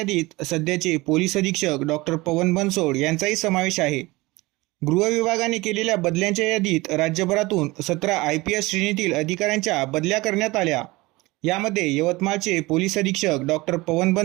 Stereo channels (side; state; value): left; quieter; 21.6 dB